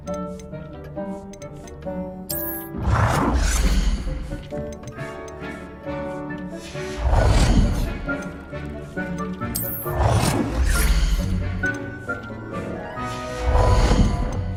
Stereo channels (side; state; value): both; identical; correlation 1.00